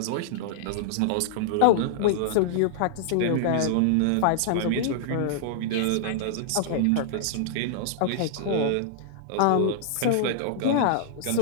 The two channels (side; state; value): both; different; correlation -0.01